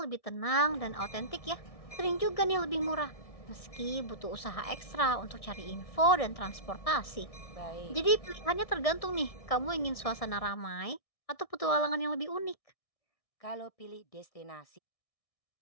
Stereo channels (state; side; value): late; right; 1.6 ms